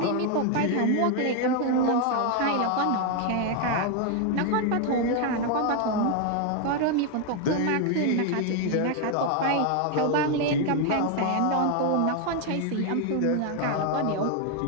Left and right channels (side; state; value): both; different; correlation 0.01